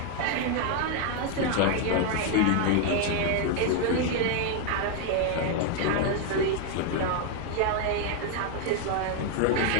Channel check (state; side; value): different; both; correlation 0.01